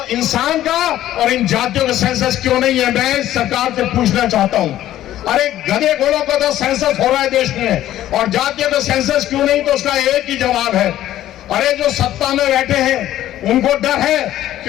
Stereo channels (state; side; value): quieter; right; 13.1 dB